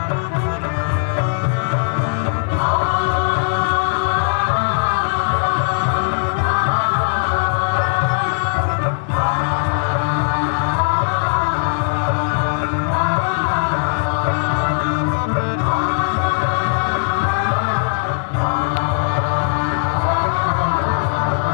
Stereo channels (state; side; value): silent; right; 67 dB below the other